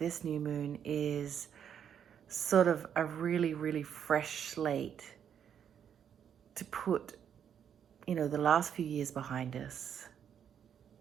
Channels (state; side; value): quieter; left; 8.6 dB